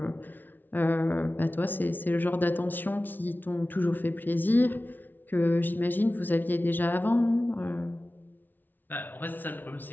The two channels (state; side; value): late; right; 0.088 ms